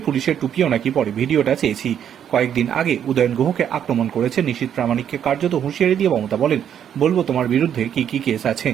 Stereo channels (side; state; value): left; quieter; 9.2 dB